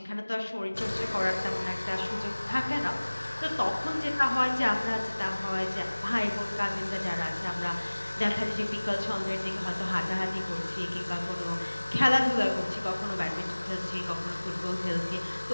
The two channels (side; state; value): both; inverted; correlation -1.00